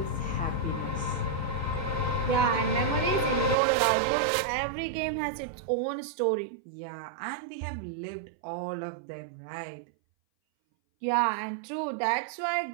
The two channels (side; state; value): left; drops out; at 3.6 s